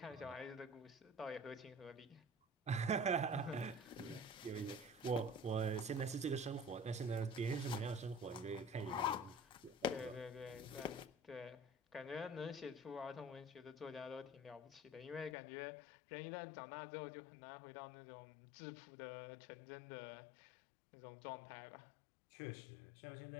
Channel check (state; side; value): drops out; right; at 15.4 s